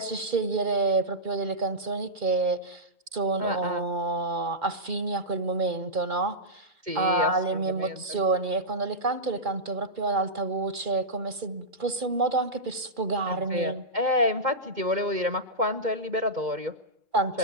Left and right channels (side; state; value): left; late; 2.4 ms